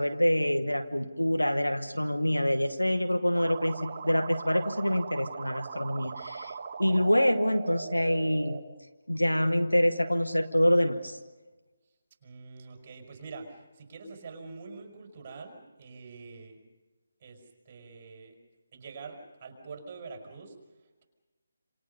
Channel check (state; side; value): inverted; both; correlation -0.98